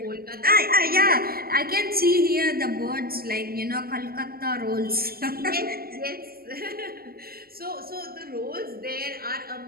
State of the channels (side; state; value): left; late; 0.44 ms